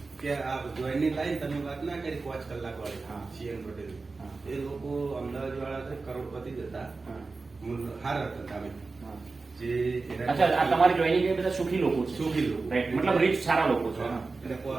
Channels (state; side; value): quieter; left; 3.9 dB